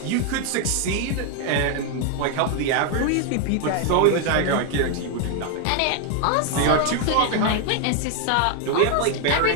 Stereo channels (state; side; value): different; both; correlation 0.00